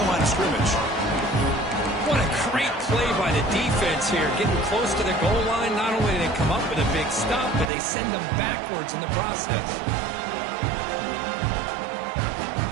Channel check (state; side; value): drops out; left; at 7.7 s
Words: the line of scrimmage. What a great play by the defense here. Getting close to the goal line, not only do they come up with a big stop, but they send them backwards in the process.